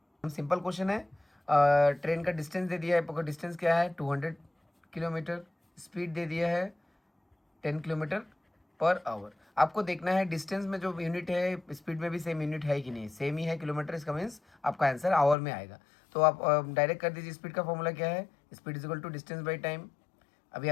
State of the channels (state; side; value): drops out; right; at 15.4 s